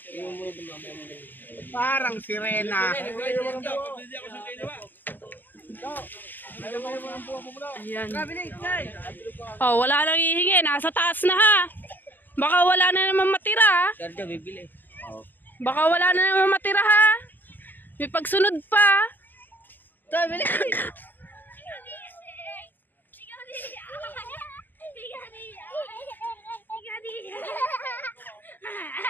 Parang sirena. Ayan. Oh, wala nang hihingi. Nasa taas na ha. Baka wala na naman matira ha. Sergio, bibili. Baka wala na naman matira ha. May pagsunod pa.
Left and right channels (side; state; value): right; late; 0.087 ms